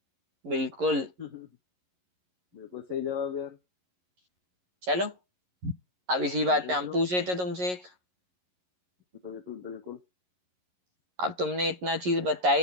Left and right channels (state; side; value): late; left; 11 ms